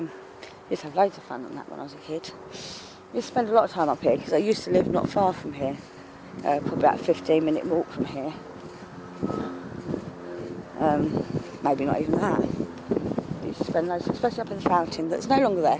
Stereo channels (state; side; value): identical; both; correlation 1.00